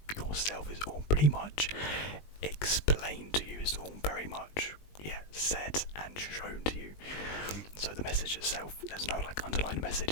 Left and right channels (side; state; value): right; late; 20 ms